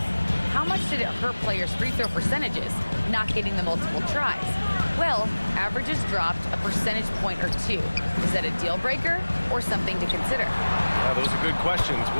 How much did it hurt players' free throw percentages, not getting the multiple tries? Well, averages dropped a percentage point or two. Is that a deal breaker or something to consider? Yeah, those are good questions.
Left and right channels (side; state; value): both; inverted; correlation -1.00